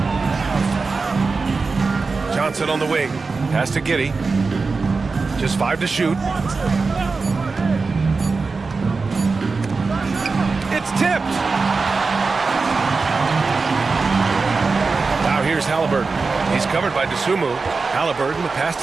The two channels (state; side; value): quieter; left; 4.2 dB